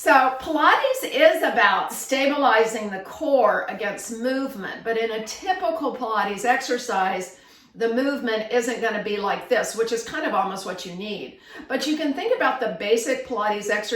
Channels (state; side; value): identical; both; correlation 1.00